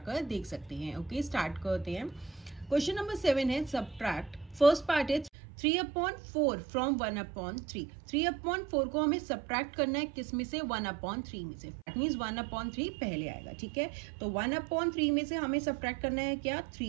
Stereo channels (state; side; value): drops out; left; at 5.3 s